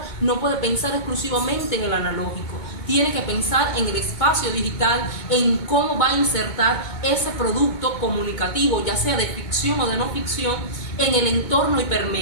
no puede pensar exclusivamente en el analógico. Tiene que pensar en el espacio digital, en cómo va a insertar ese producto comunicativo, ya sea de ficción o de no ficción, en el entorno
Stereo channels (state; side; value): late; right; 2.2 ms